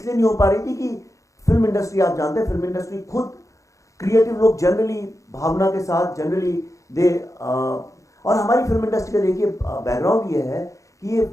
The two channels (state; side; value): late; right; 0.15 ms